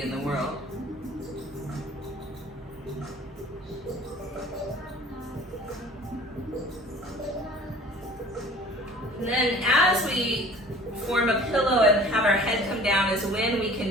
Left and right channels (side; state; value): both; normal; correlation 0.48